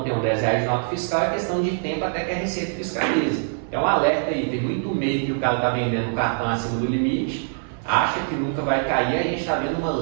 tenho R$10 de nota fiscal, é questão de tempo até que a Receita fiscalize. É um alerta aí, tem muito meio que o cara está vendendo o cartão acima do limite, acha que nunca vai cair, a gente está vendo uma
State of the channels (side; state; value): left; silent; 60 dB below the other